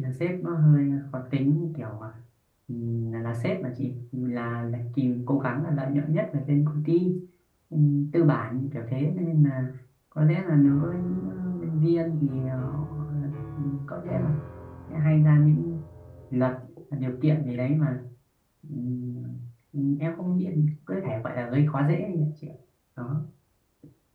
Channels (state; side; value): identical; both; correlation 1.00